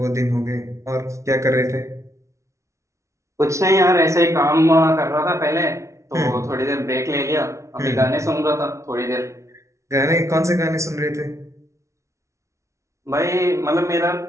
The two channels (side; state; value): left; late; 0.14 ms